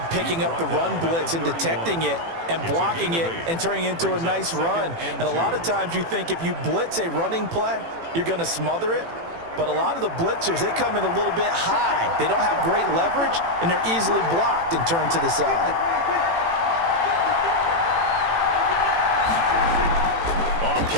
picking up the run blitz and detecting it and blocking it and turning it into a nice run. And a lot of times you think if you blitz a running play, you're going to smother it. But a lot of the blitzers, they come in a little bit high. They don't have great leverage, and they're easily blocked and turned to the side.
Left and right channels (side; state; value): left; late; 18 ms